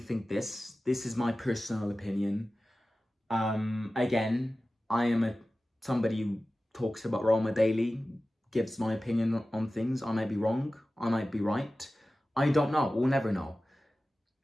this is my personal opinion. Again, I am somebody who talks about Roma daily, gives my opinion on things. I might be wrong, I might be right. I don't know, we'll never know.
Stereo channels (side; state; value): both; normal; correlation 0.95